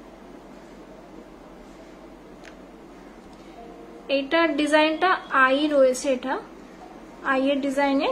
এইটার ডিজাইনটা আই রয়েছে, এটা আই এর ডিজাইনে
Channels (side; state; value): both; identical; correlation 1.00